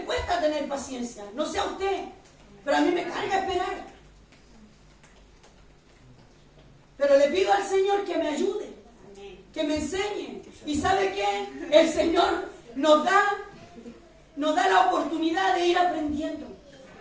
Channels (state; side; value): identical; both; correlation 1.00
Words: cuesta tener paciencia. No sé a usted, pero a mí me carga esperar. Pero le pido al Señor que me ayude, que me enseñe. ¿Y sabe qué? El Señor nos da la oportunidad de ir aprendiendo.